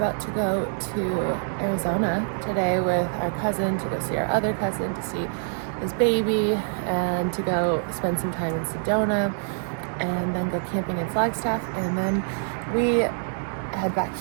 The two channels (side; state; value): left; silent; digital silence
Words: to go to Arizona today with our cousin to go see our other cousin, to see his baby, and to go spend some time in Sedona, and then go camping in Flagstaff, and then we head back